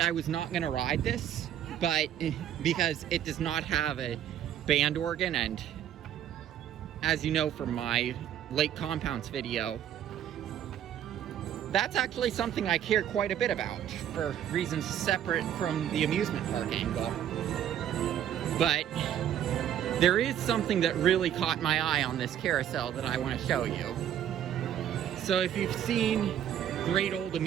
was not going to ride this, but because it does not have a band organ, and as you know from my Lake Compounds video, that's actually something I care quite a bit about for reasons separate from the amusement park angle. But there is something that really caught my eye on this carousel that I want to show you. So if you've seen Great Old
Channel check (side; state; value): left; quieter; 10.4 dB